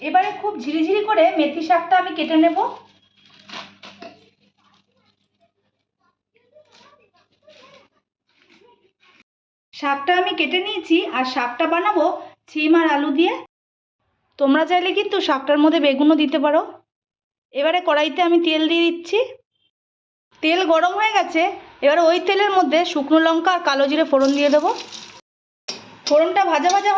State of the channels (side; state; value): both; identical; correlation 1.00